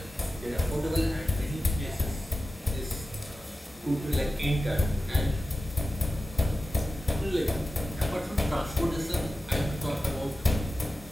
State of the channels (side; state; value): both; normal; correlation 0.93